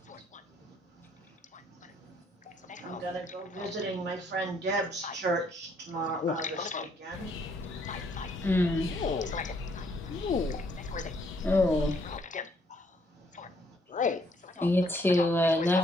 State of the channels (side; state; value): both; normal; correlation 0.67